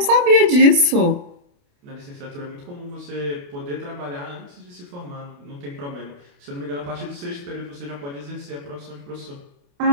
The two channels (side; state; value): left; late; 28 ms